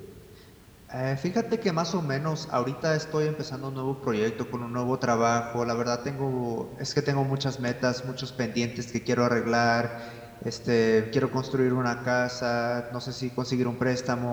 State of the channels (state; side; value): identical; both; correlation 1.00